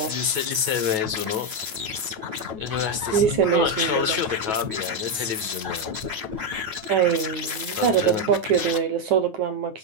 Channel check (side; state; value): left; late; 9.3 ms